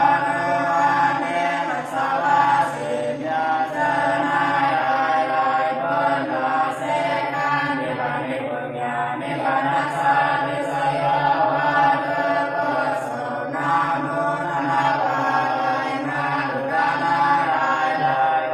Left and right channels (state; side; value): identical; both; correlation 1.00